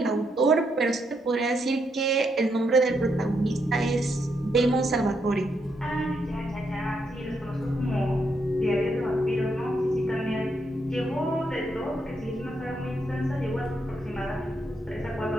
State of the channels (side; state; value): both; normal; correlation 0.78